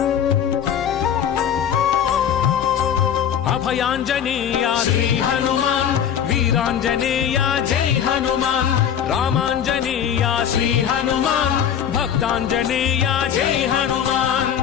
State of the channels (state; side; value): quieter; right; 8.9 dB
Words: అభయాంజనేయ శ్రీ హనుమాన్ వీరాంజనేయ జై హనుమాన్ రామాంజనేయ శ్రీ హనుమాన్ భక్తాంజనేయ జై హనుమాన్